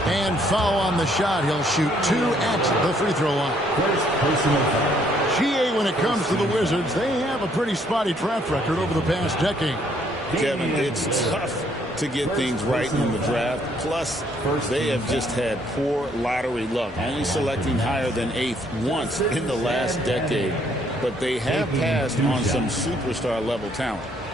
And foul on the shot. He'll shoot 2 at the free throw line. GA, when it comes to the Wizards, they have a pretty spotty track record over the past decade. Kevin, it's tough to get things right in the draft. Plus, they have just had poor lottery luck, only selecting higher than 8th once in the last decade. But they have passed on some superstar-level talent.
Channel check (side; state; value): both; normal; correlation 0.67